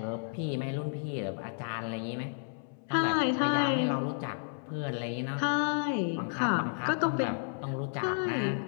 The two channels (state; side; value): silent; right; 57 dB below the other